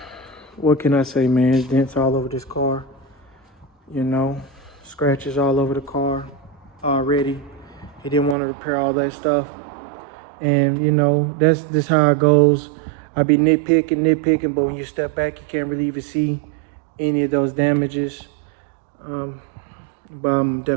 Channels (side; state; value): left; drops out; at 8.3 s